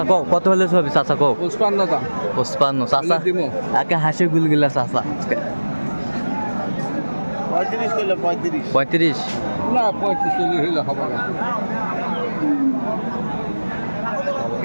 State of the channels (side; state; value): both; inverted; correlation -1.00